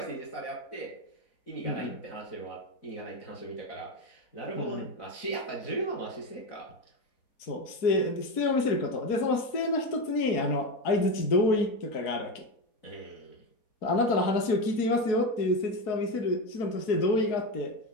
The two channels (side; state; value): right; late; 4.7 ms